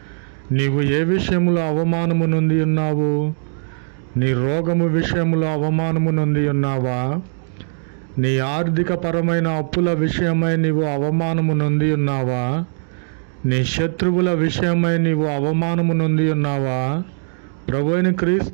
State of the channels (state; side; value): silent; left; 66 dB below the other